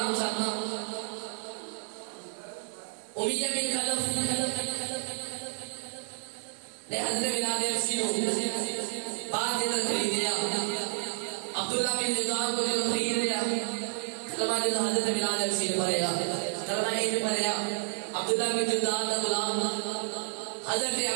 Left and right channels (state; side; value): silent; left; digital silence